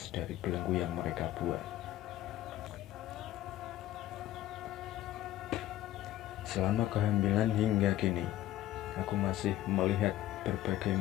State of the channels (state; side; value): quieter; right; 14.0 dB